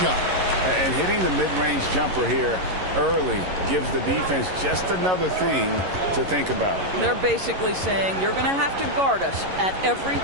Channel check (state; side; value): late; left; 11 ms